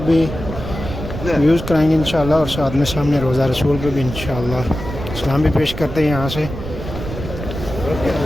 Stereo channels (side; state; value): right; noise; rumble, 8 dB below the sound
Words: بھی ویوز کرائیں گے انشاءاللہ، اور ساتھ میں سامنے روضہ رسول پہ بھی انشاءاللہ سلام بھی پیش کرتے ہیں یہاں سے۔